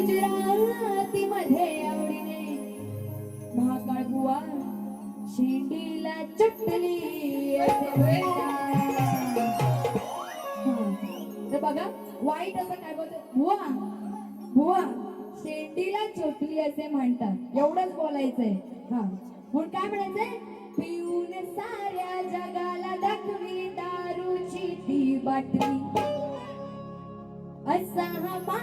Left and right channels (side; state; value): both; identical; correlation 1.00